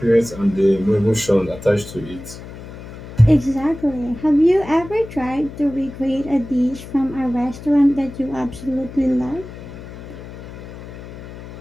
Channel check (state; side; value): noise; left; hum, 14 dB below the sound